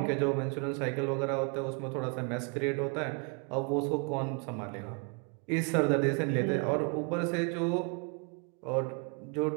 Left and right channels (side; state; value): left; quieter; 35.2 dB